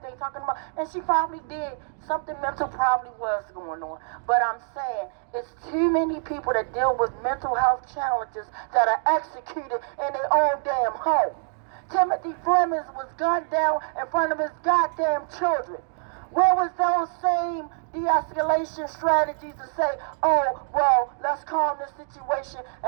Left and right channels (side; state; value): left; silent; digital silence